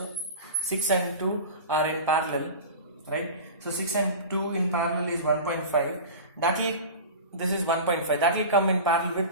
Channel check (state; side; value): inverted; both; correlation -0.32